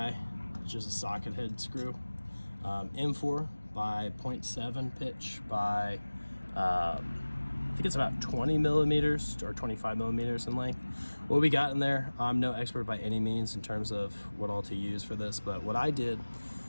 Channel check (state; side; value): inverted; both; correlation -1.00